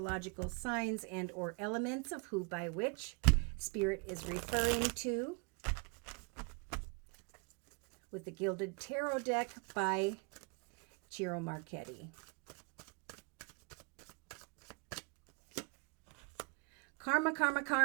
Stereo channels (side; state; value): left; quieter; 32.7 dB